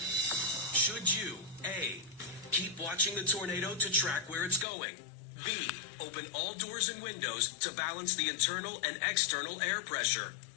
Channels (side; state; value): right; drops out; at 4.7 s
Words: Should you, A, keep watching the tornado to track where it's going? B, open all doors and windows to balance the internal and external air pressure?